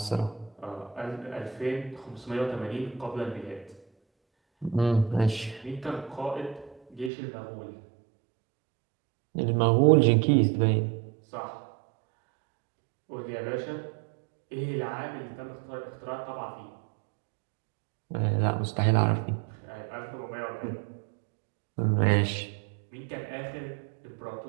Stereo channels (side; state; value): left; drops out; at 7.1 s